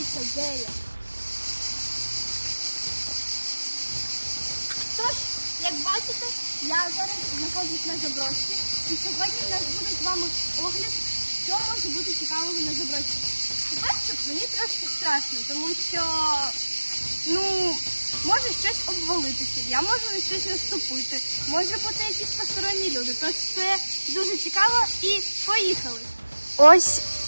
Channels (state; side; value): inverted; both; correlation -1.00